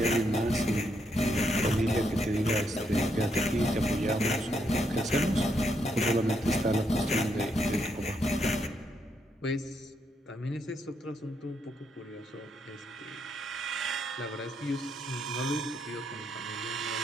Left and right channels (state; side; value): normal; both; correlation 0.77